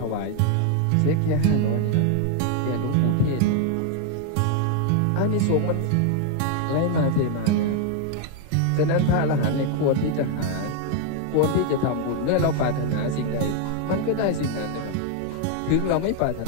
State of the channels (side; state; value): both; different; correlation 0.01